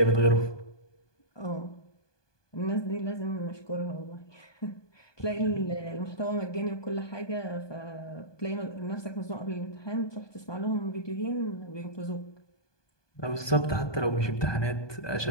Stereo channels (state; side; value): late; right; 1.2 ms